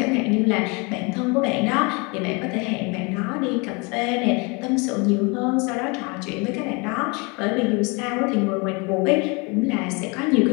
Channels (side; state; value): right; quieter; 29.4 dB